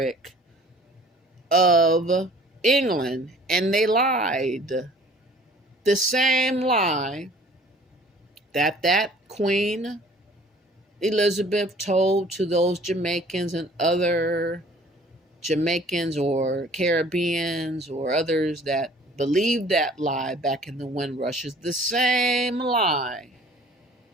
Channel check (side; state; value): both; normal; correlation 0.51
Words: of England. And they lied. The same lie that Queen Elizabeth told to those Jamaicans and other Jamaicans or Caribbeans or others that believed that lie back in the Windrush is the same lie